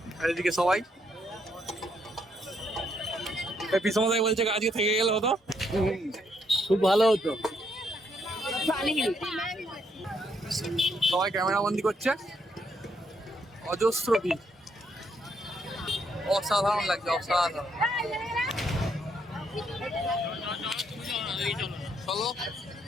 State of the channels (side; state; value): both; normal; correlation 0.74